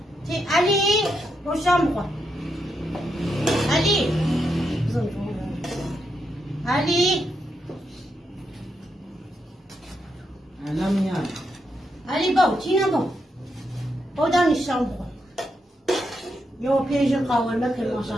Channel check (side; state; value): both; normal; correlation 0.82